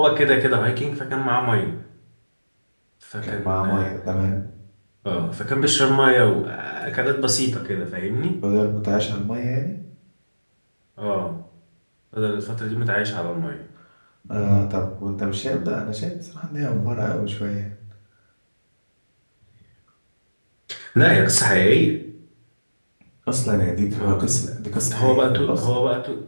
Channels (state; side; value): inverted; both; correlation -1.00